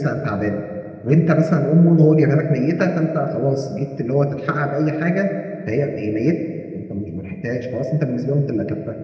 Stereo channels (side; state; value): both; identical; correlation 1.00